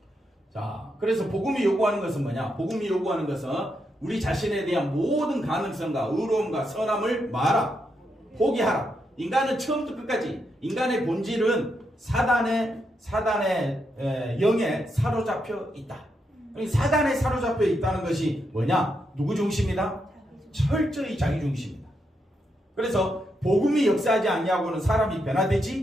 자, 그래서 복음이 요구하는 것은 뭐냐? 복음이 요구하는 것은 우리 자신에 대한 모든 가능성과 의로움과 선함을 말하라. 포기하라. 인간은 처음부터 끝까지 인간의 본질은 사단의 영에 사로잡혀 있다. 사단에 사로잡혀 있다는 것이 뭐냐? 누구 중심이다? 철저히 자기 중심이다. 그래서 복음이 역사하지 아니하고는 사람이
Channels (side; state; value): both; normal; correlation 0.82